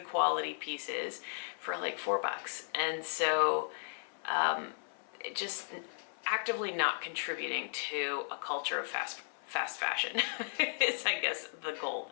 quality pieces for like $4. And so just actively not contributing to a culture of fast fashion is, I guess, the goal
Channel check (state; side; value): silent; right; 54 dB below the other